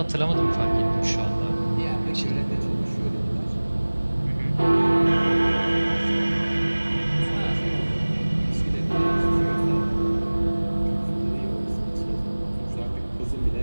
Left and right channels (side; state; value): both; inverted; correlation -1.00